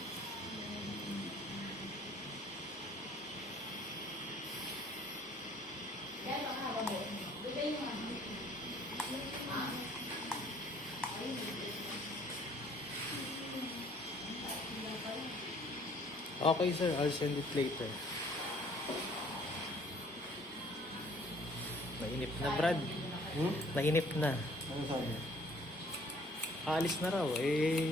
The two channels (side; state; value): both; normal; correlation 0.57